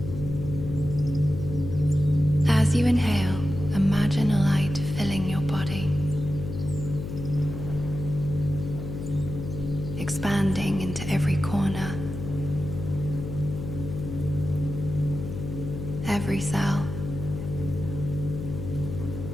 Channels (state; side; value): noise; left; hum, 7 dB below the sound